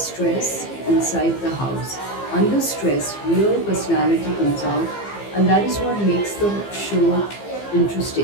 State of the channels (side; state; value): right; late; 15 ms